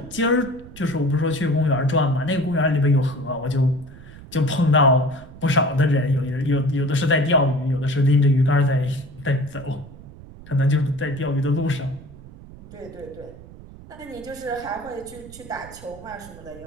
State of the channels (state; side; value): noise; right; rumble, 18 dB below the sound